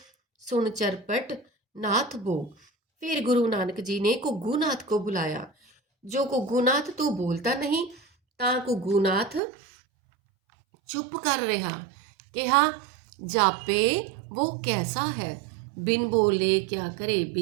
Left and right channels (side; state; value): left; drops out; at 9.4 s